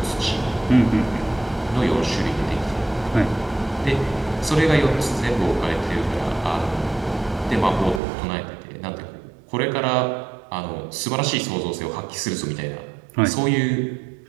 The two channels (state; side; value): drops out; left; at 8.0 s